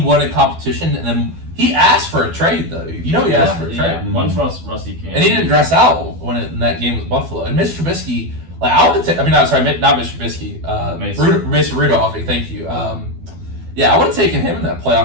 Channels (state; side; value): late; left; 12 ms